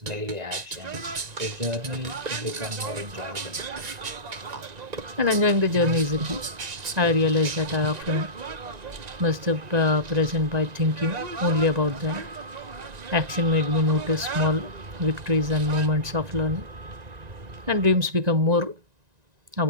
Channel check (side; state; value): left; late; 1.9 ms